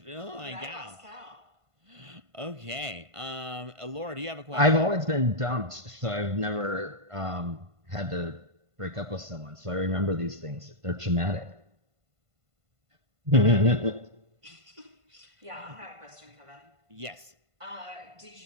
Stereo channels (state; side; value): late; left; 1.5 ms